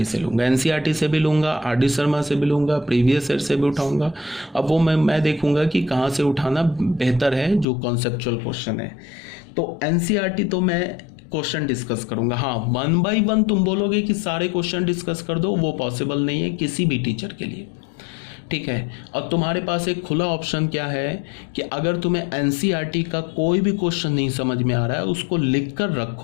से लूँगा, एनसीईआरटी से भी लूँगा, आरडी शर्मा से भी लूँगा, प्रीवियस ईयर से भी उठाऊँगा। अब वो मैं देखूँगा कि कहाँ से उठाना बेहतर है, जो कॉन्सेप्चुअल क्वेश्चन है। तो एनसीईआरटी तो मैं क्वेश्चन डिस्कस करूँगा। हाँ, 1 by 1 तुम बोलोगे कि सारे क्वेश्चन डिस्कस कर दो, वो पॉसिबल नहीं है किसी भी टीचर के लिए, ठीक है। और तुम्हारे पास एक खुला ऑप्शन क्या है कि अगर तुम्हें एनसीईआरटी का कोई भी क्वेश्चन नहीं समझ में आ रहा है उसको लिख कर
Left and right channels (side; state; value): right; drops out; at 7.7 s